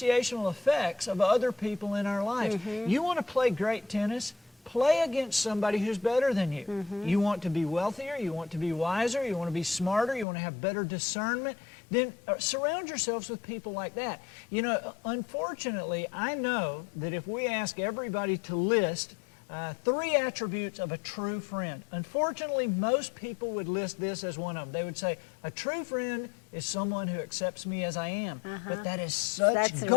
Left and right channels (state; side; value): drops out; right; at 10.2 s